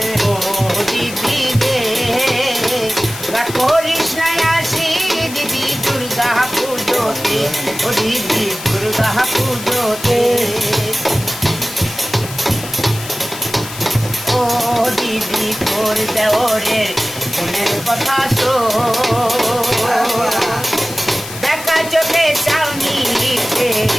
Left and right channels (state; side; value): noise; left; hiss, 12 dB below the sound